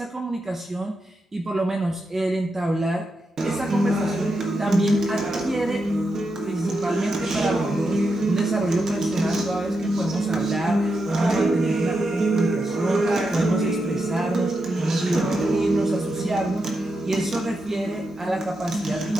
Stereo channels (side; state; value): both; normal; correlation 0.86